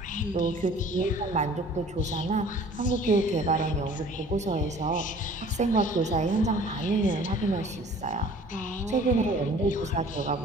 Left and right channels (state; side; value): normal; both; correlation 0.50